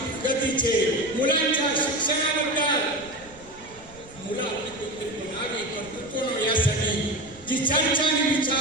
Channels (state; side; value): noise; right; rumble, 23 dB below the sound